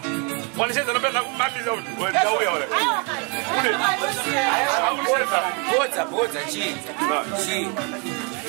One says that I'm not out. What's a cheese?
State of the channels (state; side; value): quieter; left; 34.8 dB